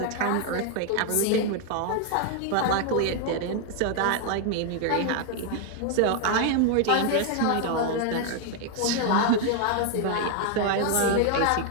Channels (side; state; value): both; different; correlation 0.00